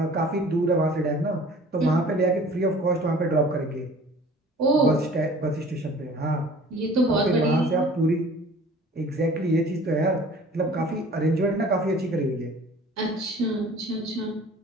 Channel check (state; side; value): normal; both; correlation 0.47